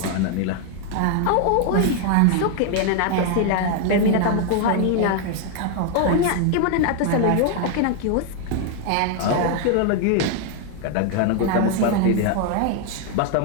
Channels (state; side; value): different; both; correlation 0.01